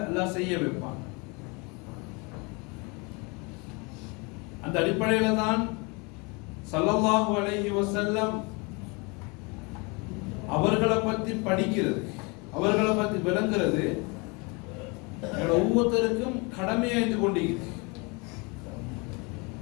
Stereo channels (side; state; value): right; quieter; 29.5 dB